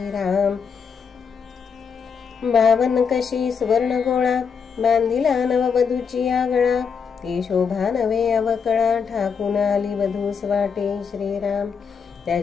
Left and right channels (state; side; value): quieter; right; 6.3 dB